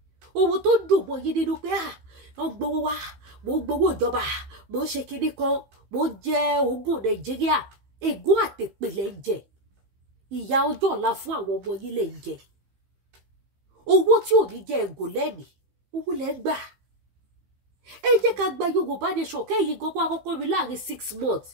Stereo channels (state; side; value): late; left; 15 ms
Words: ohun tó dùn mọ́ yín nínú pé wọ́n gbowó wá mò ń gbowó ìjọba mò ń ṣe kinní kan mò ń jẹ ogún Nàìjíríà ègún àtèpè lẹ̀ ń jẹ ìyà ọjọ́ ọ̀la fún àwọn ọmọ yín lẹ̀ ń jẹ owó tí ò ní jẹ ẹ̀gùn lẹ́mìí owó lẹ̀ ń gbà ẹ jẹ́ ká gba Yorùbá nation kẹ́yìn gbogbo àkọ́kọ́ rí láàrin 6 months